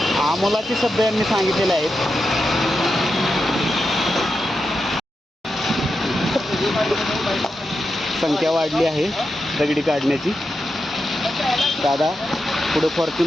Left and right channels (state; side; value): normal; both; correlation 0.88